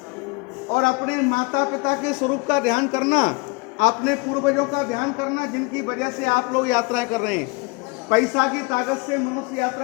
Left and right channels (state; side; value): quieter; right; 27.6 dB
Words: और अपने माता पिता के स्वरूप का ध्यान करना, अपने पूर्वजों का ध्यान करना, जिनकी वजह से आप लोग यात्रा कर रहे हैं। पैसा की ताकत से मनुष्य